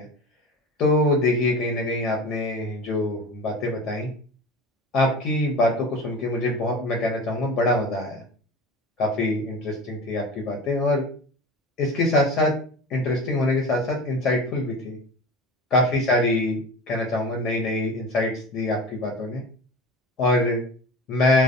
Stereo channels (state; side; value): normal; both; correlation 0.34